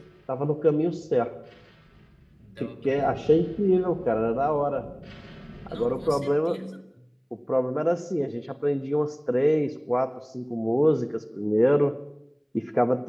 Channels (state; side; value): identical; both; correlation 1.00